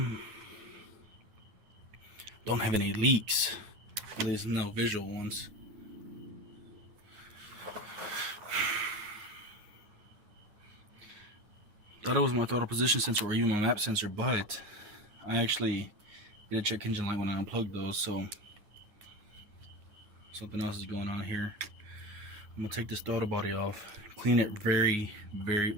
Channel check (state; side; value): late; left; 9.7 ms